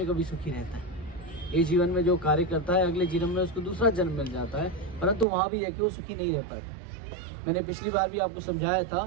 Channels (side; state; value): left; drops out; at 5.2 s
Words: कभी सुखी रहता है। ये जीवन में जो कार्य करता है, अगले जीवन में उसको दूसरा जन्म मिल जाता है, परंतु वहाँ भी रह के वो सुखी नहीं रह पाता। मैंने पिछली बार भी आपको समझाया